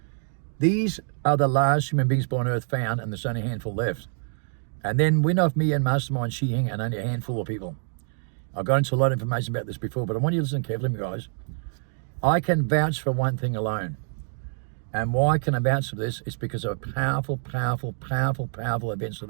These are the last human beings born on Earth found, and there's only a handful left. And then Win Off Me and Mastermind Shi Hing, and only a handful of people. I've got into a lot of information about this before, but I want you to listen carefully, guys. I can vouch for one thing alone. And why can I vouch for this? It's because of powerful, powerful, powerful, powerful events that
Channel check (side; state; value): left; silent; digital silence